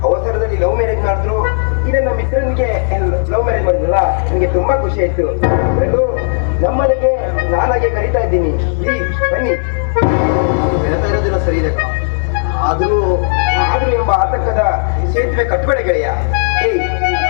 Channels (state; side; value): silent; right; digital silence